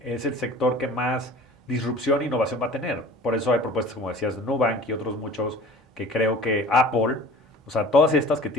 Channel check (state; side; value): normal; both; correlation 0.43